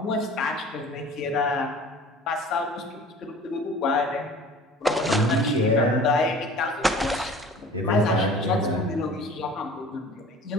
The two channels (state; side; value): normal; both; correlation 0.44